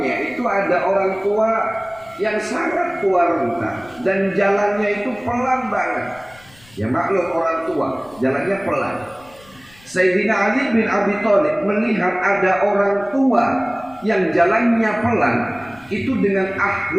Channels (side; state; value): left; noise; rumble, 26 dB below the sound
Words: itu ada orang tua yang sangat tua renta dan jalannya itu pelan banget. Ya maklum orang tua, jalannya pelan. Sayyidina Ali bin Abi Thalib melihat ada orang tua yang jalannya pelan, itu dengan